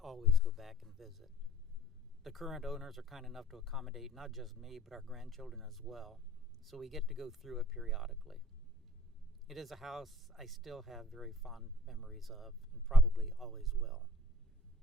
go back and visit. The current owners are kind enough to accommodate not just me, but our grandchildren as well, so we get to go through it periodically. It is a house I still have very fond memories of, and probably always will.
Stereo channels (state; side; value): normal; both; correlation 0.52